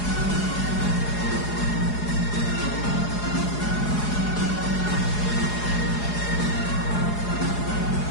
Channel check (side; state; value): right; late; 4.8 ms